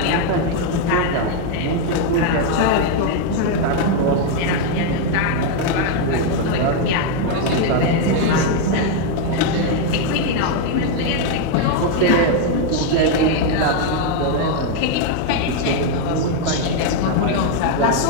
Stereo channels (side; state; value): both; different; correlation 0.00